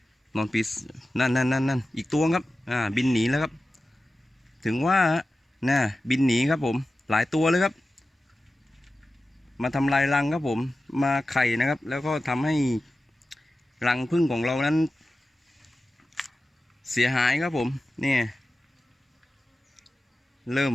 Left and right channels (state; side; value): normal; both; correlation 0.94